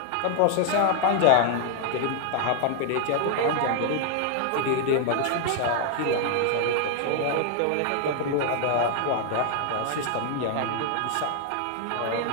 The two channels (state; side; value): different; both; correlation 0.00